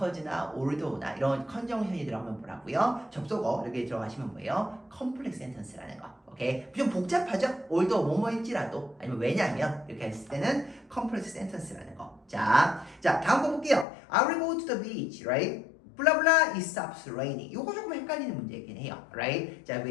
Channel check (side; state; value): right; drops out; at 13.9 s